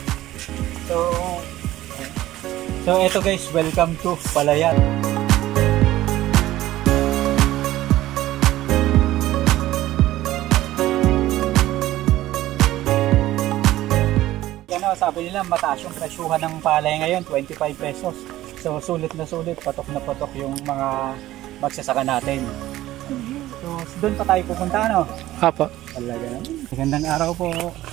So eto guys, welcome to Palayan. Sabi nila mataas yung presyuhan ng palay ngayon, 25 pesos. So sulit na sulit, patok na patok yung mga magsasaka natin. So doon pa tayo pupunta, ano? Apo. Talaga naman. Magandang araw po.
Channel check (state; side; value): quieter; left; 15.3 dB